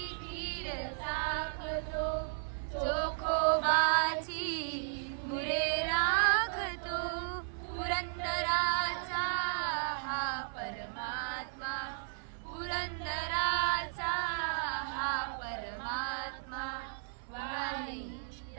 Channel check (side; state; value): left; silent; 55 dB below the other